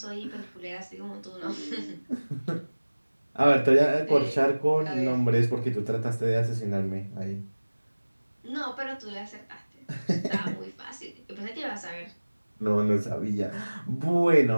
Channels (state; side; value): inverted; both; correlation -1.00